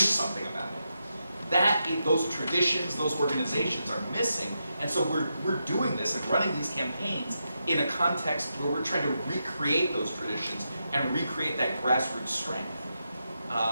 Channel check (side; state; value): both; inverted; correlation -0.85